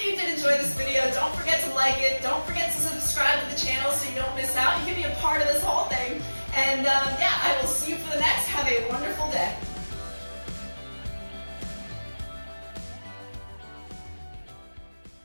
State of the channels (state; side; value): inverted; both; correlation -1.00